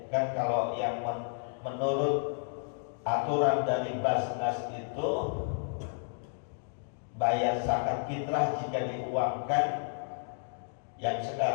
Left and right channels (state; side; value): silent; right; 57 dB below the other